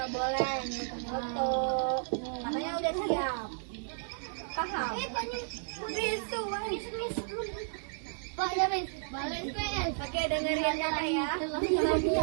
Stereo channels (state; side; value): silent; left; digital silence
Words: boleh foto. Katanya udah siap. Paham? Oke, dengerin ya.